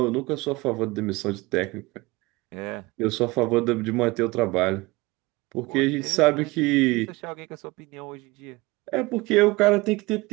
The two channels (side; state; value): left; quieter; 22.6 dB